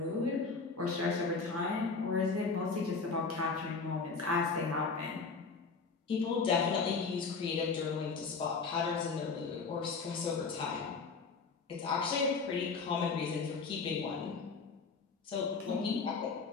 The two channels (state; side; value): quieter; right; 4.6 dB